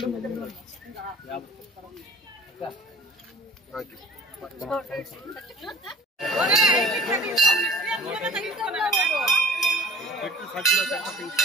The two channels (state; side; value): normal; both; correlation 0.46